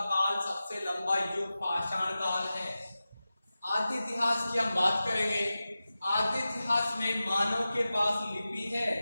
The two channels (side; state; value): both; inverted; correlation -0.95